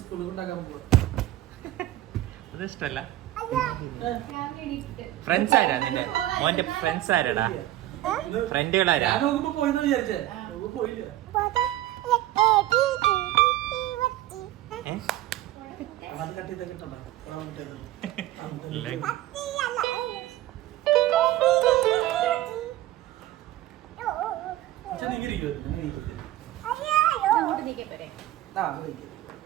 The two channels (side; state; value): left; quieter; 14.8 dB